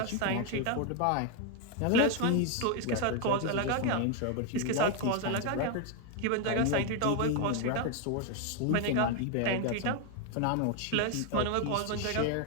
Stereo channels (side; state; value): both; different; correlation 0.01